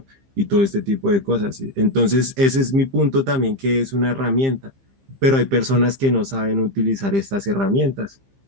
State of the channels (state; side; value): late; left; 15 ms